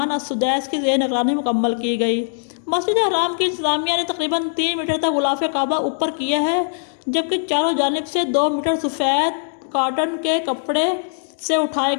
अस्सुदैस की ज़ेर निगरानी मुकम्मल की गई। मस्जिद हराम की इंतज़ामिया ने तकरीबन 3 मीटर तक गुलाफ़े काबा ऊपर किया है, जबकि चारों जानिब से 2 मीटर सफ़ेद कॉटन के कपड़े से उठाए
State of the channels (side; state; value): right; silent; digital silence